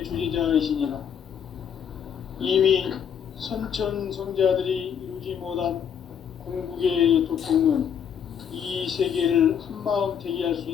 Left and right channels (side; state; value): right; quieter; 8.1 dB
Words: 주재자이시니라. 이미 선천성자들이 이루지 못한 궁극의 도통은 이 세계를 한마음 되게 할 수